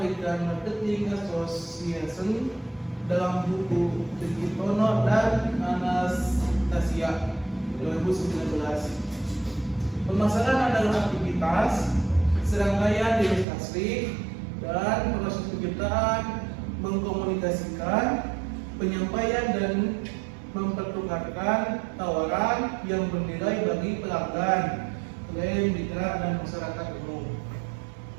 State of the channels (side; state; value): left; drops out; at 13.5 s